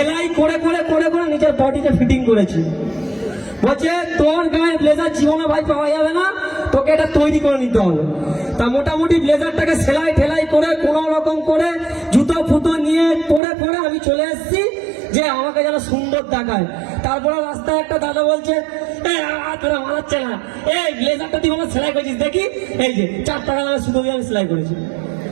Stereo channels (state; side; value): drops out; left; at 13.4 s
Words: করে করে করে করে নিজের বডিতে ফিটিং করেছি। বলছে তোর গায়ে ব্লেজার জীবনে ভাই পাওয়া যাবে না, তোকে এটা তৈরি করে নিতে হবে। তা মোটামুটি ব্লেজারটাকে সেলাই ঠেলাই করে কোনো রকম করে জুতো ফুতো নিয়ে পরে পরে আমি চলে এসেছি যে আমাকে যেন সুন্দর দেখায়। তারপরে রাস্তায় একটা দাদা বলছে, তোরা মানাচ্ছে না, এই ব্লেজারটা তুই আমার সেলাই করেছিস দেখি, এই যে 4 টাকা দামে সুতো দিয়ে আমি সেলাই করেছি।